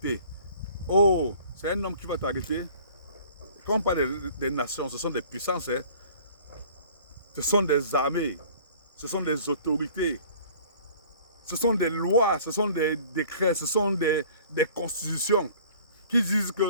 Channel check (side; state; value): both; inverted; correlation -0.50